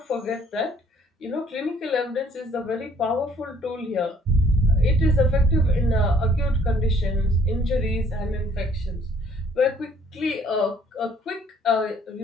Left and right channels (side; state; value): both; normal; correlation 0.60